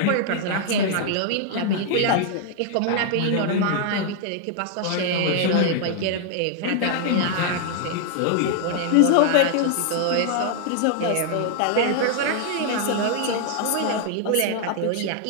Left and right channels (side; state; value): both; different; correlation 0.00